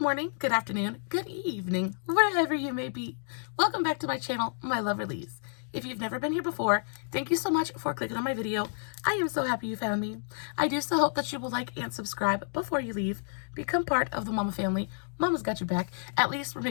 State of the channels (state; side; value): silent; right; digital silence